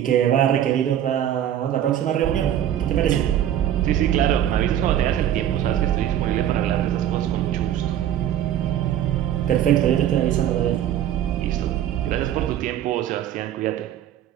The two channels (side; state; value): left; quieter; 11.0 dB